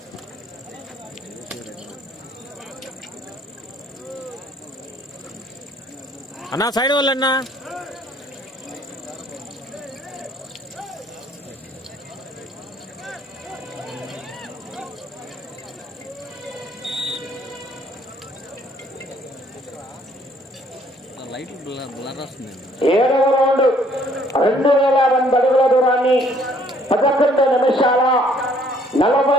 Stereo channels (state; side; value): normal; both; correlation 0.62